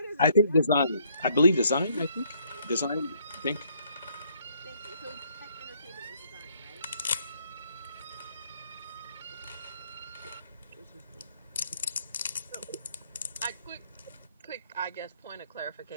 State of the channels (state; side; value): inverted; both; correlation -0.67